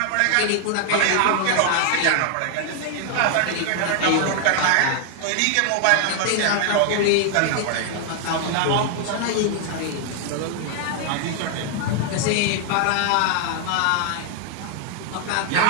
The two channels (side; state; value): both; different; correlation 0.00